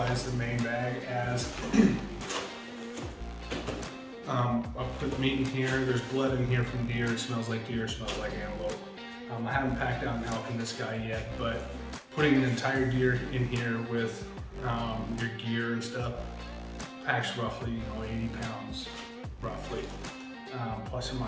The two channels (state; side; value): identical; both; correlation 1.00